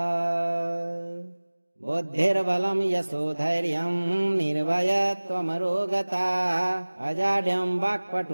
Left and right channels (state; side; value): inverted; both; correlation -1.00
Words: बुद्धिर्बलं यशोधैर्यं निर्भयत्वमरोगता अजाड्यं